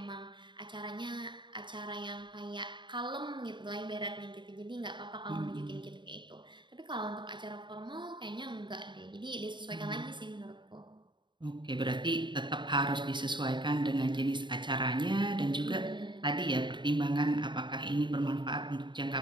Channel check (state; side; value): late; left; 0.23 ms